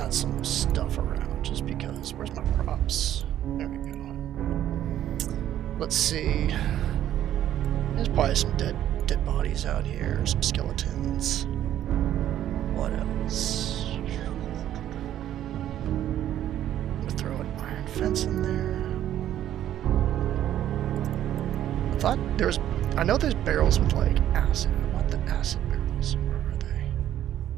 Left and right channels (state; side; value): quieter; left; 11.7 dB